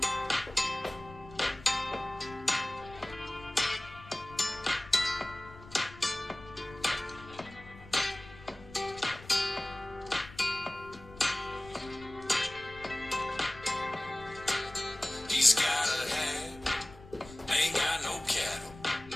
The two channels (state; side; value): noise; left; rumble, 18 dB below the sound